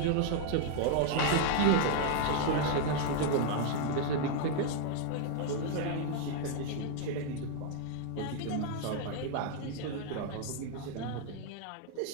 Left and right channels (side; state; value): both; different; correlation 0.00